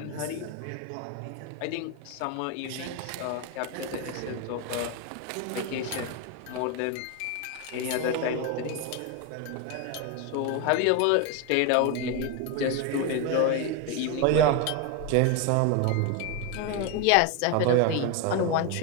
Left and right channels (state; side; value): different; both; correlation 0.02